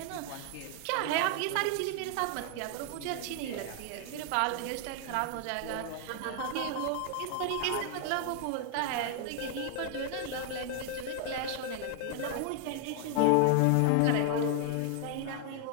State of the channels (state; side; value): different; both; correlation 0.00